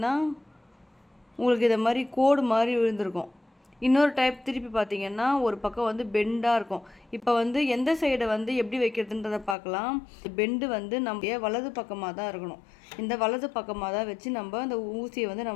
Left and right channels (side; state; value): right; drops out; at 9.6 s